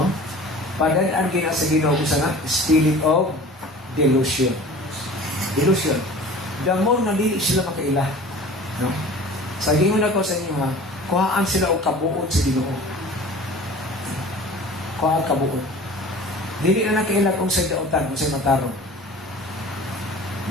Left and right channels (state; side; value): normal; both; correlation 0.42